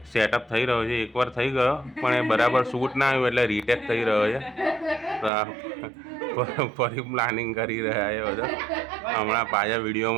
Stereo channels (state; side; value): drops out; left; at 5.3 s